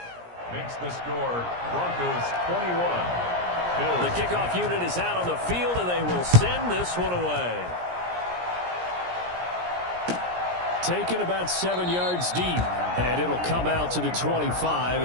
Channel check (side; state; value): left; late; 17 ms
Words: Makes the score Broncos 21. Bills. The kickoff unit is out on the field, and they will send this one away. Taken about 7 yards deep, and it'll come out to the 25